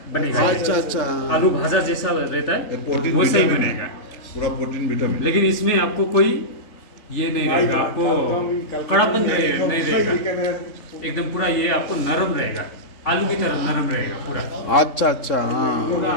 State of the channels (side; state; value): right; late; 3.5 ms